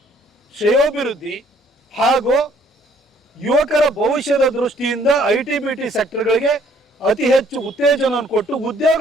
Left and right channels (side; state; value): both; normal; correlation 0.62